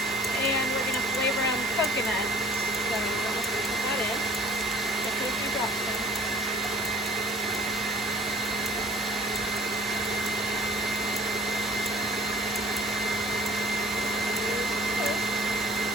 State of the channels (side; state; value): both; normal; correlation 0.50